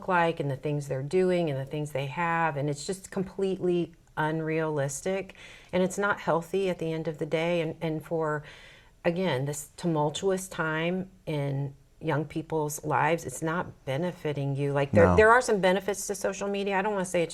like and the things they're doing and the things they have, and it's just completely unrealistic, and it's not healthy at the end of the day. And for, again, this tumultuous time in young people's lives, it's not benefiting you. Like, No. there are some benefits to social media. I don't want to say it's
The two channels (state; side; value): identical; both; correlation 1.00